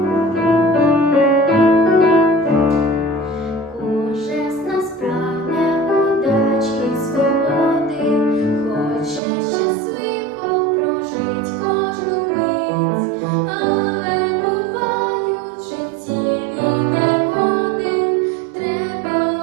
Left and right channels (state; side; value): drops out; left; at 9.2 s